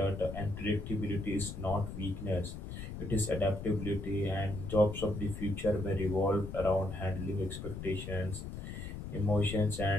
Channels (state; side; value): noise; left; rumble, 8 dB below the sound